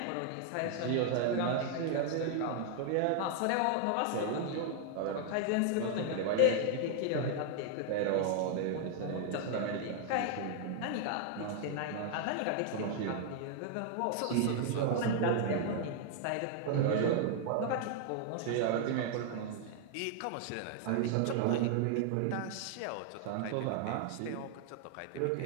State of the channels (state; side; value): different; both; correlation 0.00